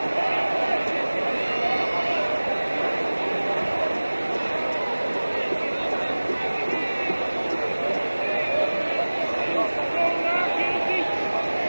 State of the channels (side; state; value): both; inverted; correlation -1.00